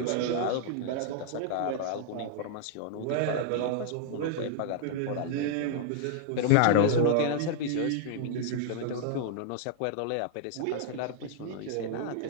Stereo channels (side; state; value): both; different; correlation -0.01